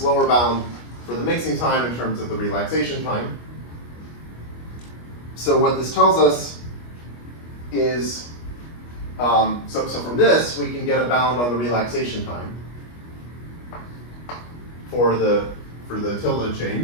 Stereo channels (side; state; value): right; late; 25 ms